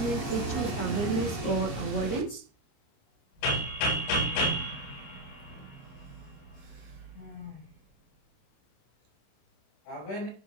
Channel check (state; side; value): late; right; 30 ms